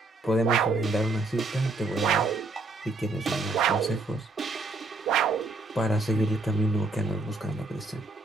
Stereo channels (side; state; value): left; quieter; 3.3 dB